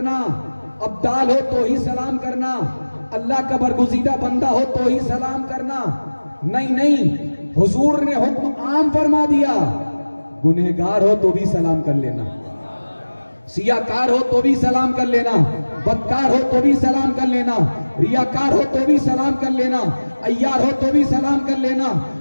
ابدال ہو تو ہی سلام کرنا، اللہ کا برگزیدہ بندہ ہو تو ہی سلام کرنا۔ نہیں نہیں، حضور نے حکم عام فرما دیا، گنہگار ہو تو بھی سلام کر لینا، سیاکار ہو تو بھی سلام کر لینا، بدکار ہو تو بھی سلام کر لینا، ریاکار ہو تو بھی سلام کر لینا، عیار ہو تو بھی سلام کر لینا،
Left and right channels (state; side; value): inverted; both; correlation -1.00